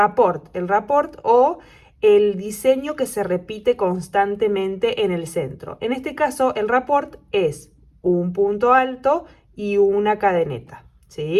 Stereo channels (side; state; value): both; identical; correlation 1.00